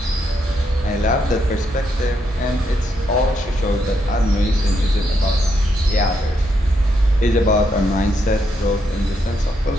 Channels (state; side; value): normal; both; correlation 0.78